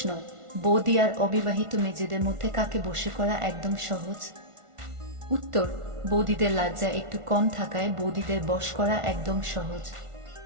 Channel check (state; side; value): late; left; 1.5 ms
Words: বৌদি আর অবিবাহিত মেয়েদের মধ্যে কাকে বশে করা একদম সহজ? উত্তর: বৌদিদের লজ্জা একটু কম থাকায় বৌদিদের বশ করা একদম সহজ।